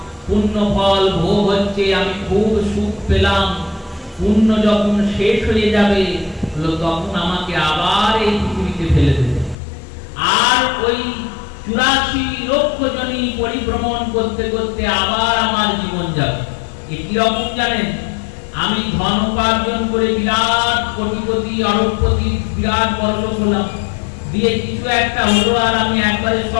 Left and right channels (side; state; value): right; drops out; at 9.6 s